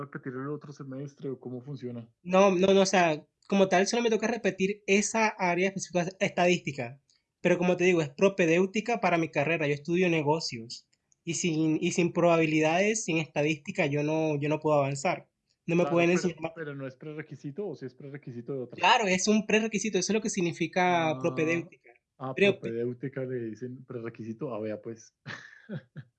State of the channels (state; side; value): identical; both; correlation 1.00